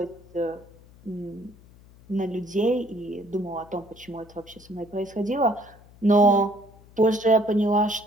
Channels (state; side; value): noise; left; hum, 24 dB below the sound